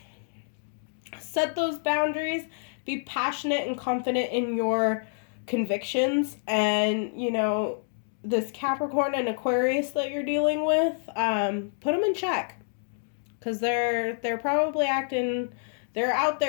those boundaries. Be passionate and confident in your convictions. And, you know, this Capricorn and Aquarius that you're dealing with, put them in check. Because they're probably they're out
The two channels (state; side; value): silent; right; digital silence